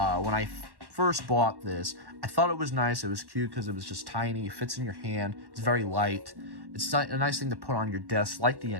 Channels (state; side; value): late; left; 1.1 ms